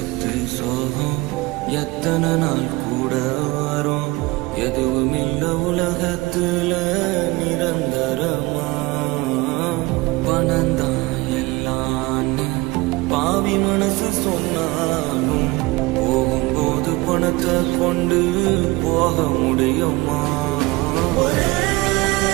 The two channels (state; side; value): quieter; left; 22.2 dB